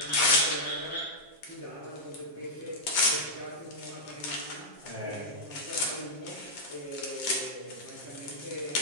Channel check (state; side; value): late; right; 7.4 ms